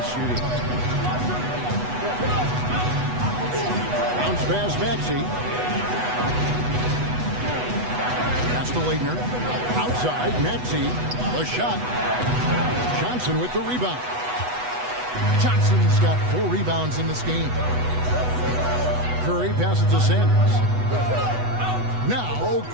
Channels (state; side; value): late; left; 8.1 ms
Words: shooting. Bounce pass Maxey. Pass to Leitner. Outside, Maxey. The shot. Johnson with the rebound. Johnson's got 4 rebounds in this game. Curry passes to Sanders. Now,